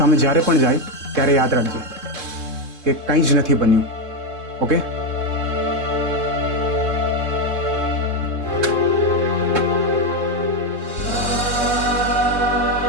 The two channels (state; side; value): late; left; 3.7 ms